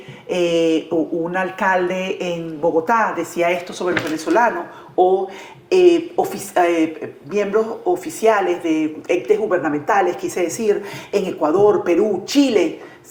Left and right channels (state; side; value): identical; both; correlation 1.00